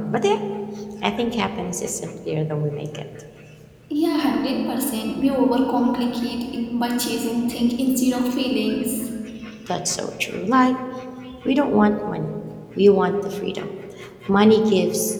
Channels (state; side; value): identical; both; correlation 1.00